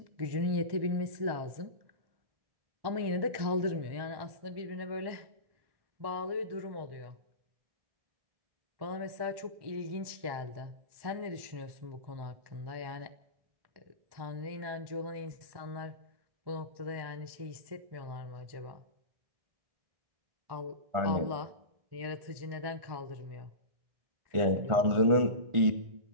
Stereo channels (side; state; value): left; late; 1.1 ms